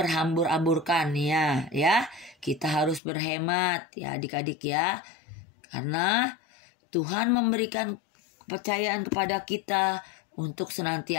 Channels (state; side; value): drops out; right; at 3.0 s